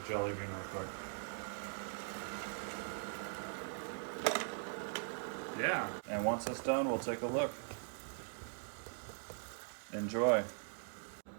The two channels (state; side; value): silent; left; digital silence